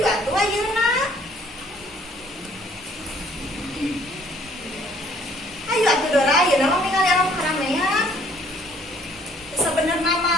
atuh ayeuna. Ayo atuh Dora, ayeuna mah ningali alam keramaian. Sebenarnya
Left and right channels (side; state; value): both; normal; correlation 0.60